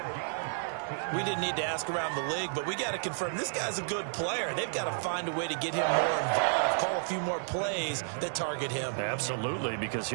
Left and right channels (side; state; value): left; silent; digital silence